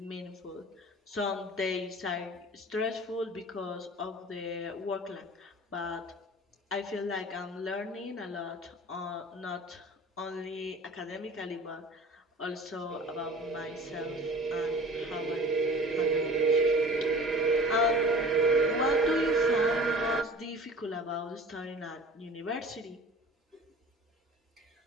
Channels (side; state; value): both; normal; correlation 0.42